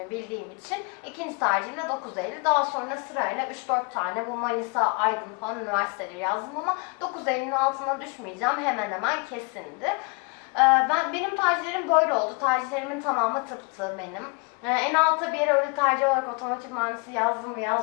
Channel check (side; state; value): right; quieter; 32.3 dB